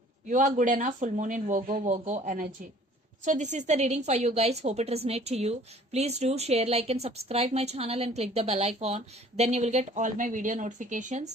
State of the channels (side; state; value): both; normal; correlation 0.53